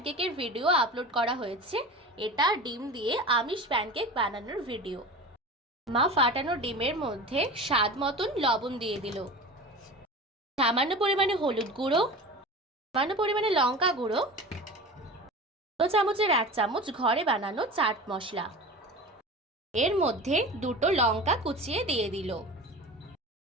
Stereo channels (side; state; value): both; normal; correlation 0.33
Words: ভিডিও আপলোড করা হয়েছে। এটা ডিম দিয়ে আমিষ প্যানকেক বানানোর ভিডিও। মা ফাটানো ডিমের মধ্যে স্বাদ মতন লবণ দিয়ে দিল, সামান্য পরিমাণে হলুদ গুঁড়ো, সামান্য পরিমাণে লঙ্কা গুঁড়ো, 2 চামচের 1 চামচ ঘরে বানানো চাট মশলা, এর মধ্যে দুটো লঙ্কা কুচিয়ে দিয়ে দিল।